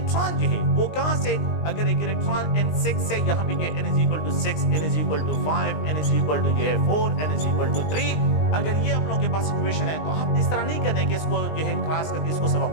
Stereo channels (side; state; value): right; late; 20 ms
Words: जो है वो कहां से, अगर एक इलेक्ट्रॉन N6 से यहाँ पे n is equal to 6, n is equal to 5, n is equal to 4, n is equal to 3, अगर ये आप लोगों के पास सिचुएशन है तो आप इस तरह नहीं करने कि इसको जो है क्रॉस करके इसको सब